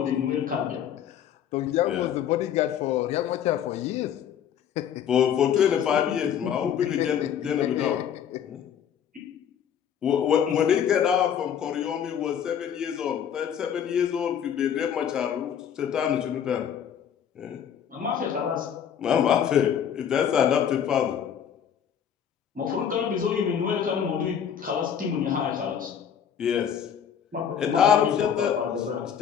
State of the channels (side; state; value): right; quieter; 8.7 dB